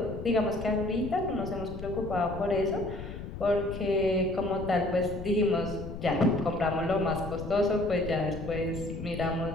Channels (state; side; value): noise; left; rumble, 9 dB below the sound